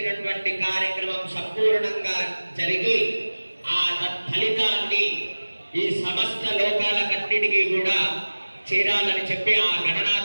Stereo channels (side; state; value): both; inverted; correlation -1.00